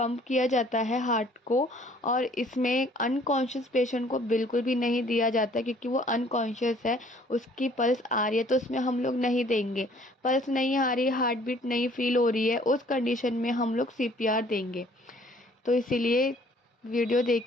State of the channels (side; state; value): both; normal; correlation 0.57